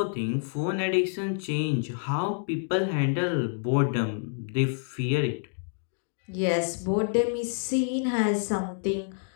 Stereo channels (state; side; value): silent; right; digital silence